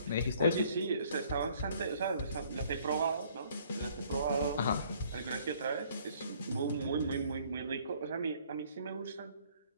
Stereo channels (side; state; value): both; inverted; correlation -0.60